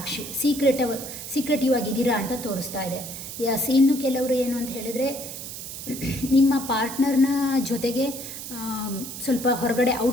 ಸೀಕ್ರೆಟಿವ್ ಆಗಿದ್ದೀರಾ ಅಂತ ತೋರಿಸ್ತಾ ಇದೆ. ಎಸ್, ಇನ್ನು ಕೆಲವರು ಏನು ಅಂತ ಹೇಳಿದರೆ ನಿಮ್ಮ ಪಾರ್ಟ್ನರ್ನ ಜೊತೆಗೆ ಸ್ವಲ್ಪ ಹೊರಗಡೆ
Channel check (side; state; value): right; noise; hiss, 9 dB below the sound